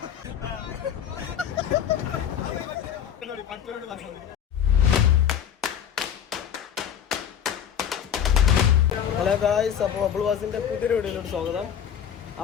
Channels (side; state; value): right; quieter; 9.0 dB